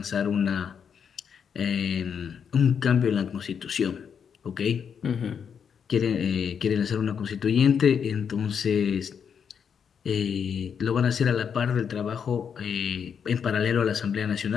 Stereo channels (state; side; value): quieter; right; 7.2 dB